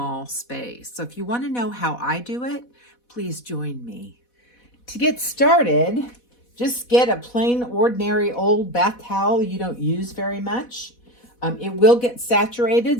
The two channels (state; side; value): late; right; 4.1 ms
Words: space. So if you want to know how I do it, please join me. To get started, just get a plain, ordinary old bath towel you don't use very much. It will get